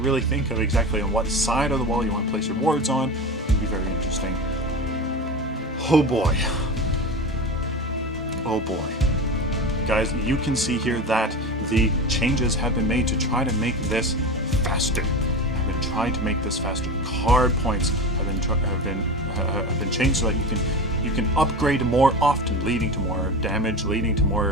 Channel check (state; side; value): normal; both; correlation 0.27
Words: think of exactly on what side of the wall you want to place your wards on. It'll be very interesting. Oh boy. Oh boy. Guys, you can see here that the changes have been made to try to make this faster. I've been trying to make this faster. Card points have been changed so that you can upgrade more often, leading to more damage, leading to